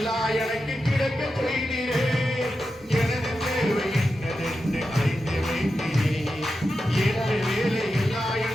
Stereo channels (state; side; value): normal; both; correlation 0.90